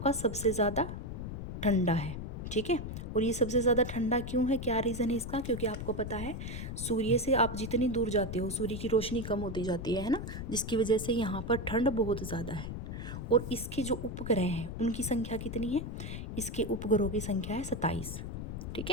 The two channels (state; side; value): noise; left; rumble, 6 dB below the sound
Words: सबसे ज़्यादा ठंडा है, ठीक है। और ये सबसे ज़्यादा ठंडा क्यों है, क्या रीज़न है इसका? क्योंकि आपको पता है सूर्य से आप जितनी दूर जाते हो सूर्य की रोशनी कम होती जाती है ना, जिसकी वजह से यहाँ पर ठंड बहुत ज़्यादा है। और इसके जो उपग्रह हैं उनकी संख्या कितनी है? इसके उपग्रहों की संख्या है 27। ठीक